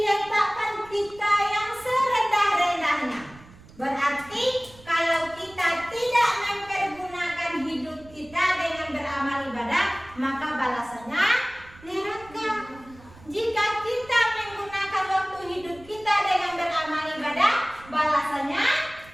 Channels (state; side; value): noise; right; rumble, 22 dB below the sound